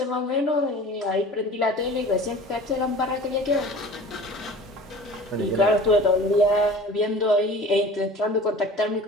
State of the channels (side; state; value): both; normal; correlation 0.42